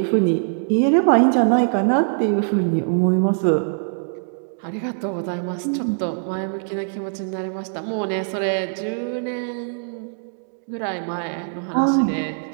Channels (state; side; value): silent; left; digital silence